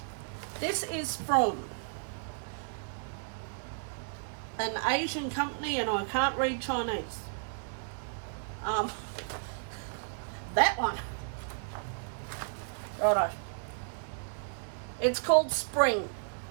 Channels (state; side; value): silent; left; digital silence